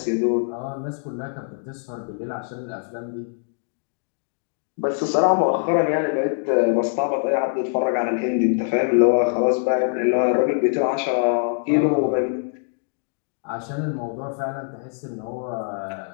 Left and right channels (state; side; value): silent; right; digital silence